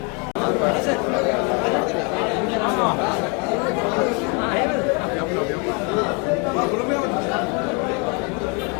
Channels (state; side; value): quieter; right; 32.6 dB